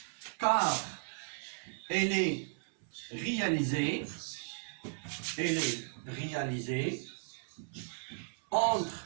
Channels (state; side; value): silent; left; 54 dB below the other